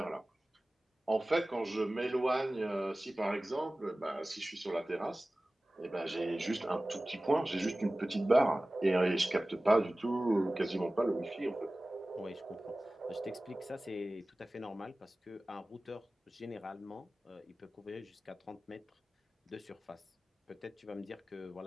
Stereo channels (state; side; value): normal; both; correlation 0.97